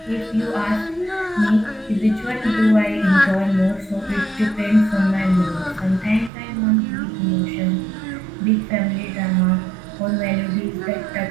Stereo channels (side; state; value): left; drops out; at 6.3 s